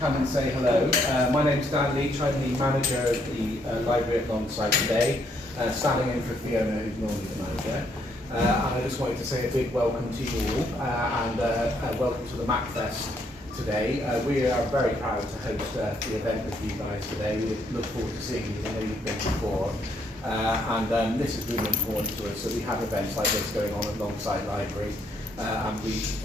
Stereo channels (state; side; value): normal; both; correlation 0.72